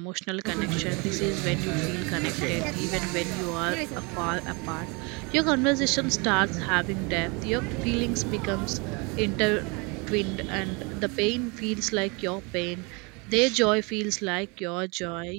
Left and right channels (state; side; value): quieter; left; 29.8 dB